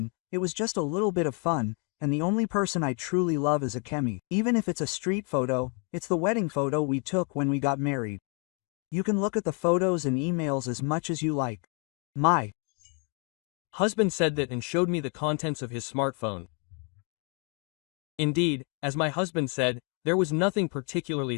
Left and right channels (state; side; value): quieter; right; 37.1 dB